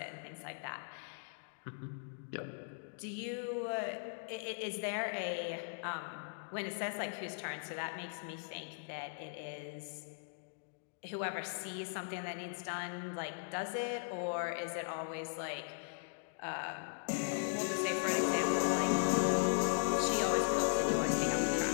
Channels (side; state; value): right; silent; digital silence